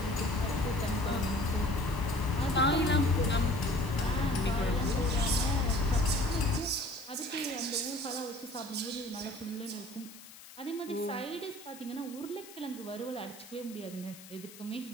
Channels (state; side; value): noise; left; hiss, 18 dB below the sound